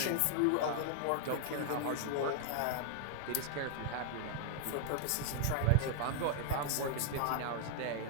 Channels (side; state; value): both; different; correlation 0.00